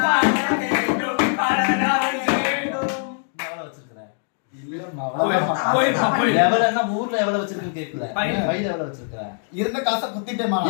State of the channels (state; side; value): silent; right; 64 dB below the other